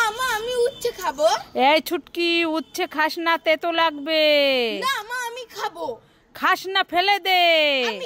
মা আমি উচ্ছে খাবো। এই ছুটকি, উচ্ছে খাস না, তেতো লাগবে। না মা আমি খাবো। খাস না, ফেলে দে।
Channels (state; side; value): identical; both; correlation 1.00